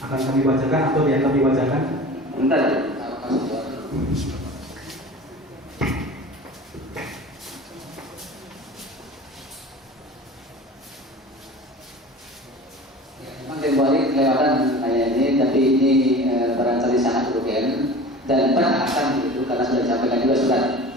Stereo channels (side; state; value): both; normal; correlation 0.38